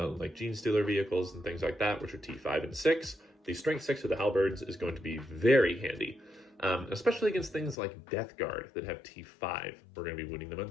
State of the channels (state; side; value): drops out; right; at 7.8 s